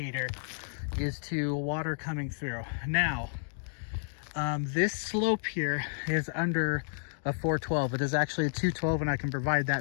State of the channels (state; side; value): silent; right; digital silence